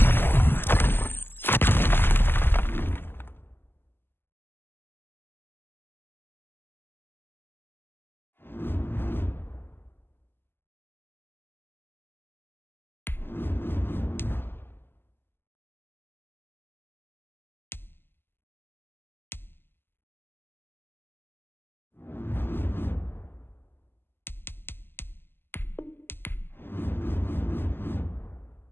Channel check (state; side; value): late; right; 0.10 ms